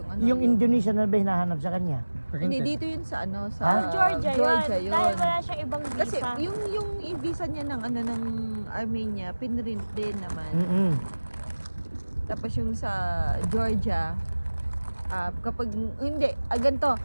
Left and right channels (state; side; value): inverted; both; correlation -1.00